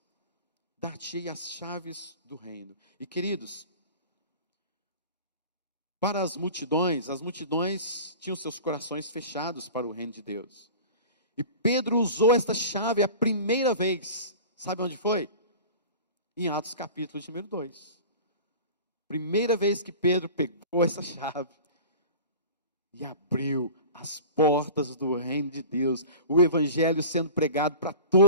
Dar-te-ei as chaves do reino. E queridos, para as multidões tinham seus corações fechados para o reino de Deus. E Pedro usou esta chave a primeira vez. Sabe onde foi? Em Atos capítulo de número 2. Primeira vez que Pedro pegou essa chave e abriu as portas do reino de Deus, o evangelho sendo pregado para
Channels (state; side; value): inverted; both; correlation -0.38